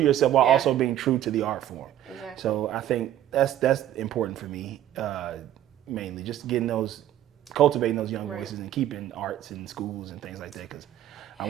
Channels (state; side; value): quieter; left; 12.1 dB